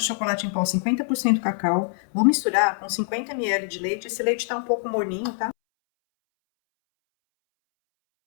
de chocolate em pó, 50% cacau. Vou misturar com 50 ml de leite. Esse leite tá um pouco morninho, tá?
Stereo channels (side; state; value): right; silent; 62 dB below the other